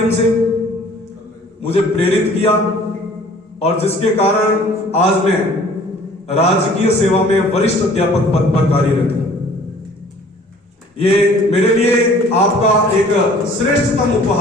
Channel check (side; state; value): both; normal; correlation 0.51